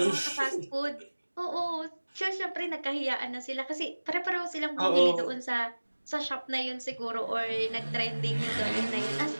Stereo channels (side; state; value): both; inverted; correlation -1.00